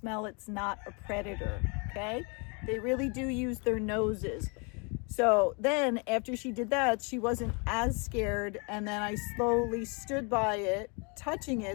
it's not a predator, okay? They really do use their noses. So then after she did that, she wasn't as scared. And then I slowly stood by it, touching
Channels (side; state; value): right; quieter; 33.5 dB